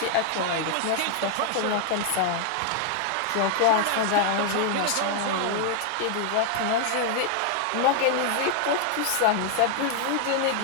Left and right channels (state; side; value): different; both; correlation 0.00